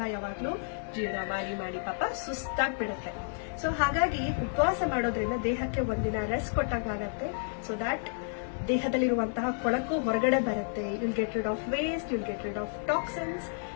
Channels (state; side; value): silent; right; digital silence